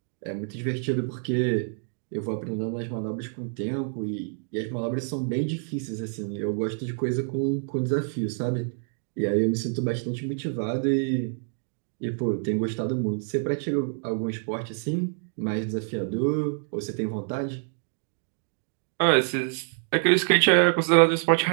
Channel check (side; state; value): left; silent; digital silence